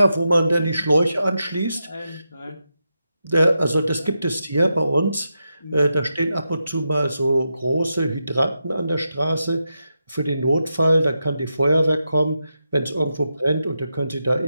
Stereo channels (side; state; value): both; inverted; correlation -0.87